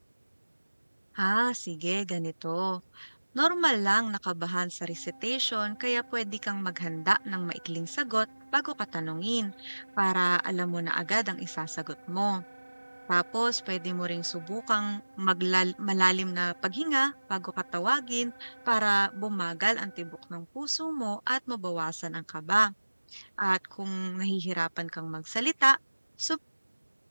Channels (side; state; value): both; inverted; correlation -1.00